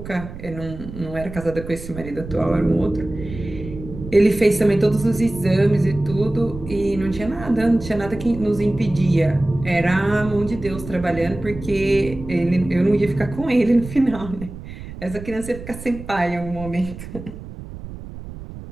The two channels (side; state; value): right; noise; rumble, 12 dB below the sound